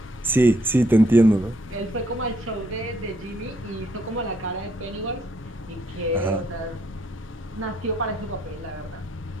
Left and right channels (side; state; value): both; normal; correlation 0.71